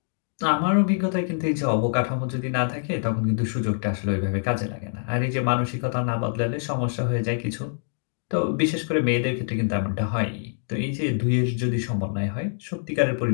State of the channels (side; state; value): right; silent; digital silence